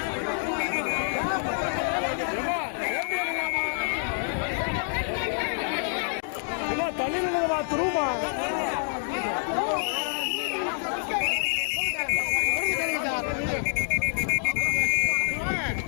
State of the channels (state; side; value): silent; right; digital silence